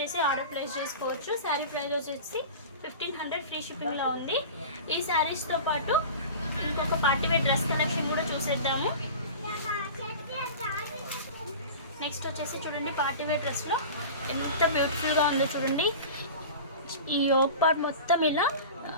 ఆర్డర్ ప్లేస్ చేసుకోవచ్చు. శారీ ప్రైస్ వచ్చేసి 1500 ఫ్రీ షిప్పింగ్లో ఉంది. ఈ శారీస్తో పాటు ఇంకొక పార్టీవేర్ డ్రెస్ కలెక్షన్ కూడా చూసేద్దాము. నెక్స్ట్ వచ్చేసి చూడండి పార్టీవేర్ డ్రెస్లో ఎంత బ్యూటిఫుల్గా ఉందో చూడండి. ఈ యోక్ పార్ట్ మొత్తం ఇలా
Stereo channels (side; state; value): both; inverted; correlation -0.34